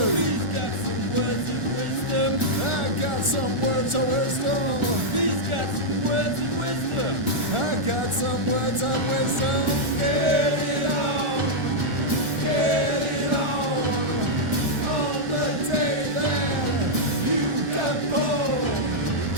He's got some words of wisdom. I got some words of wisdom. He's got some words of wisdom. I got some words of wisdom. Get it on, get it on the day that you got born.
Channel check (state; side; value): late; left; 1.4 ms